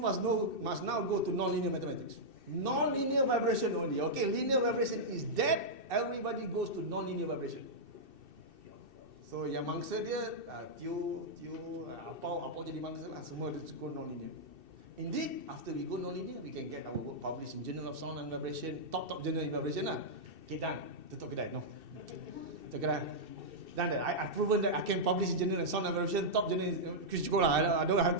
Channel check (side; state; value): left; late; 2.7 ms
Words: now go to nonlinear mathematics. Nonlinear vibration only. Okay, linear vibration is dead. Everybody goes to nonlinear vibration. So yang mangsa dia apa jadi mangsa lah, semua dia go nonlinear. Indeed, after we go nonlinear, we can get our work published in Journal of Sound and Vibration, top journal in vibration lah. Okay, done. Tutup kedai, no. Tutup kedai. Done that. I've proven that I can publish in Journal of Sound and Vibration, top journal. Cukup lah. I don't have